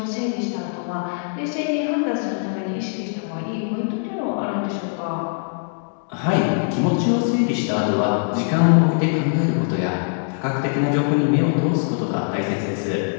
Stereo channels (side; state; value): right; silent; digital silence